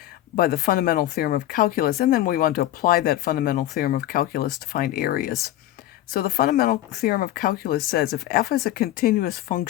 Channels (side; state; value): right; quieter; 13.9 dB